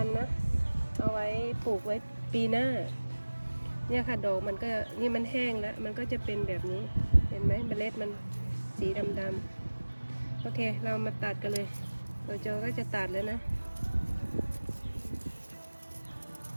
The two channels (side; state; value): both; inverted; correlation -1.00